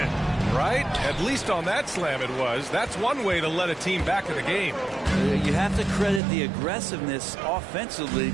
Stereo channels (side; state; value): left; drops out; at 6.2 s